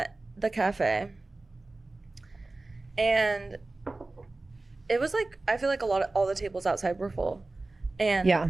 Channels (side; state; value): left; quieter; 3.1 dB